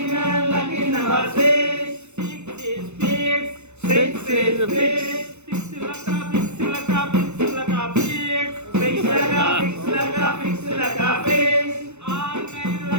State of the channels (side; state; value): left; late; 0.82 ms